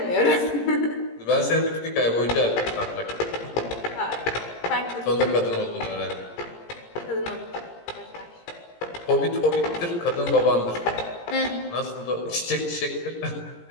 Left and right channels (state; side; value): late; right; 17 ms